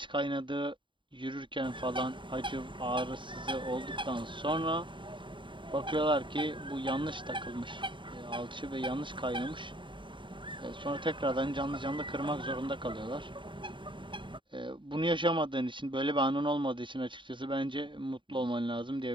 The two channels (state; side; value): late; left; 0.24 ms